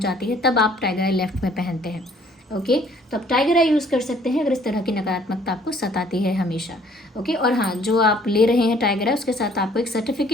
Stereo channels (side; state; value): both; normal; correlation 0.59